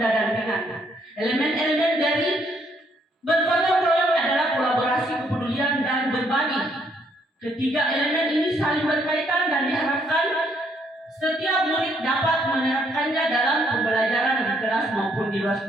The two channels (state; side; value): normal; both; correlation 0.70